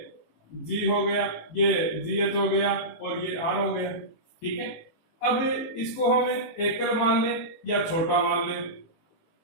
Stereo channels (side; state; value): right; late; 18 ms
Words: जी हो गया, ये जी एच हो गया और ये आर हो गया। ठीक है, अब इसको हमें एकल मान ले या छोटा मान ले,